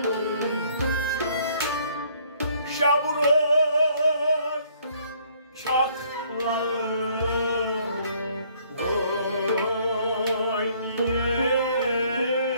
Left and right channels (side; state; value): both; inverted; correlation -0.62